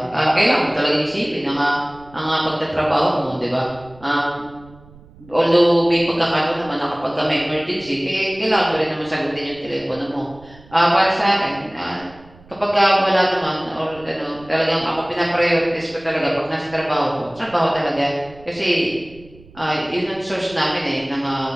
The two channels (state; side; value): noise; right; rumble, 23 dB below the sound